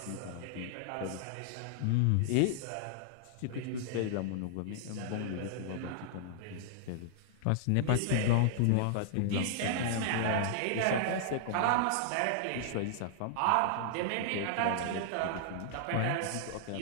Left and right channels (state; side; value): different; both; correlation -0.01